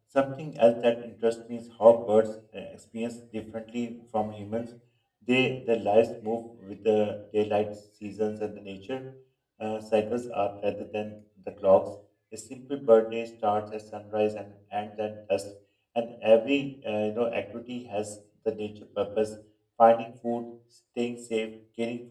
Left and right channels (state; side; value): identical; both; correlation 1.00